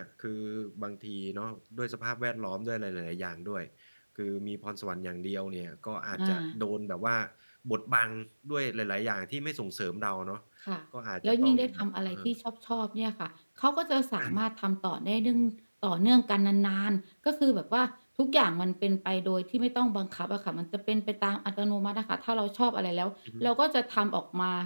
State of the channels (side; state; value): both; inverted; correlation -1.00